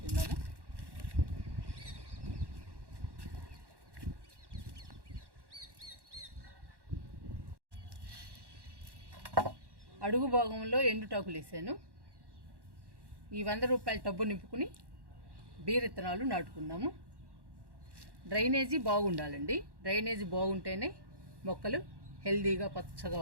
అడుగు భాగంలో ఎండుటాకులు వేసాను. ఈ 100 రూపాయల టబ్బు నింపుకుని బీర విత్తనాలు నాటుకుందాము. డ్రైనేజీ బాగుండాలండి. డ్రైనేజీ బాగుంటేనే మొక్కలు హెల్దీగా పచ్చగా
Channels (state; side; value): late; left; 1.1 ms